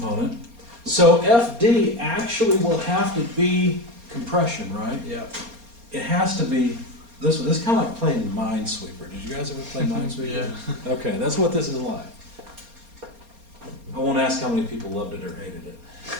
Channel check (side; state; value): left; late; 4.3 ms